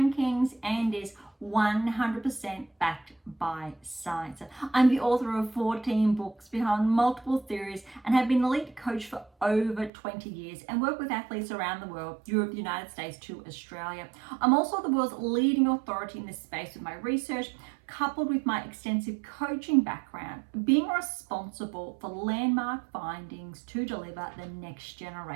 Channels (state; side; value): drops out; left; at 9.9 s